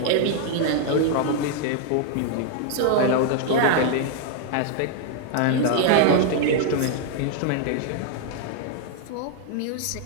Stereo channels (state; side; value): different; both; correlation 0.00